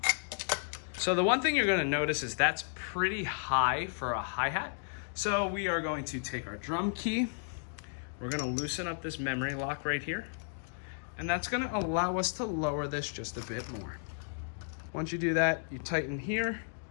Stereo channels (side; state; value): right; silent; digital silence